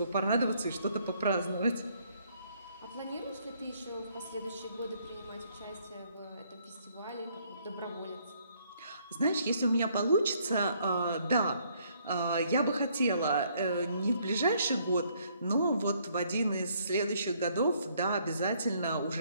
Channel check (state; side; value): inverted; both; correlation -0.67